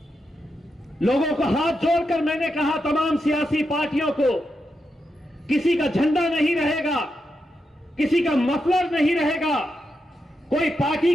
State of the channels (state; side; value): normal; both; correlation 0.85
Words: लोगों को हाथ जोड़कर मैंने कहा, तमाम सियासी पार्टियों को, किसी का झंडा नहीं रहेगा, किसी का मफलर नहीं रहेगा, कोई पार्टी